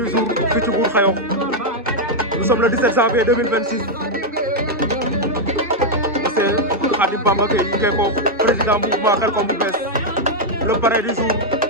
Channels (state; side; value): normal; both; correlation -0.01